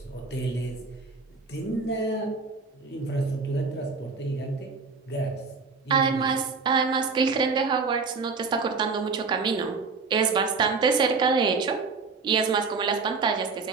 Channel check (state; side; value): quieter; left; 4.6 dB